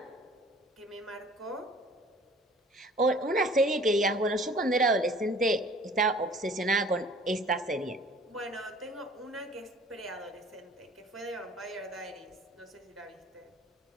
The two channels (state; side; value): normal; both; correlation 0.50